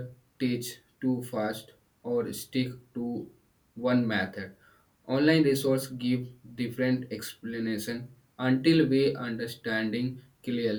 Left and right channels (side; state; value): both; identical; correlation 1.00